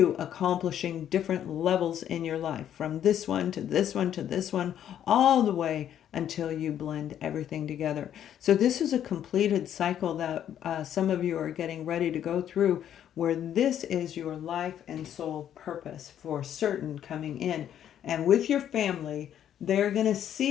accomplishing different levels in your life, from this one to this one to this one, all the way until you blend everything together. So this is a completed cycle that some of you are getting ready to go through, where this is your life and soul purpose for certain coming in. And with your family, they're going to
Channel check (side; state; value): right; quieter; 10.2 dB